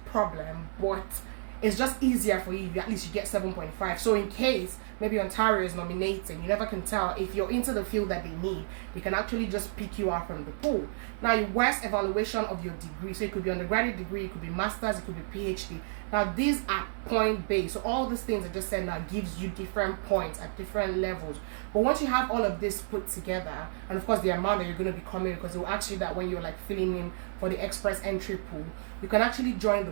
problem, but it's just easier for you if at least you get 7.5. So in case maybe Ontario is nominating, you never can tell if you're into the field that they need, they can actually just pick you out from the pool. Now, your worst evaluation of your degree, so it could be undergraduate degree, it could be master's, it could be PhD. Now, these are point based. So all these things I just said now gives you different points at different levels. But once you have all of this put together, and of course the amount that you're going to be coming, because it will ask you that when you're like filling in for the express entry pool, you can actually join the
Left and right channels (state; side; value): silent; left; digital silence